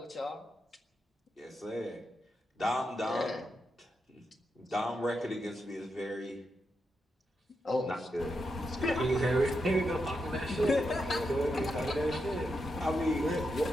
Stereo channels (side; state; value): both; normal; correlation 0.85